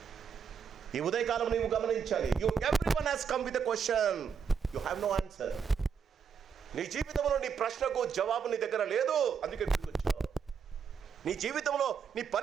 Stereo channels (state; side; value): quieter; left; 6.7 dB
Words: ఈ ఉదయకాలం నీవు గమనించాలి. Everyone has come with a question, you have no answer. నీ జీవితంలో నీ ప్రశ్నకు జవాబు నీ దగ్గర లేదు, అందుకే గుర్తొచ్చావు. నీ జీవితంలో నీ